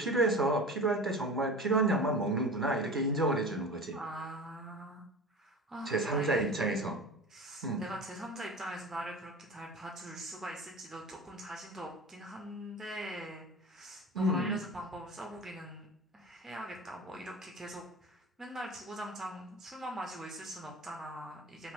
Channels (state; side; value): normal; both; correlation 0.33